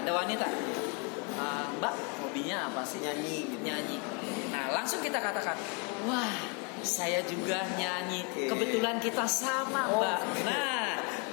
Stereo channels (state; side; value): quieter; right; 33.8 dB